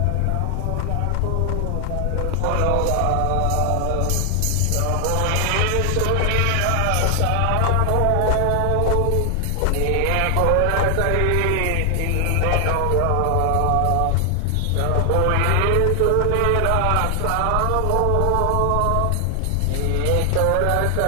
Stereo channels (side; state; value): both; different; correlation 0.00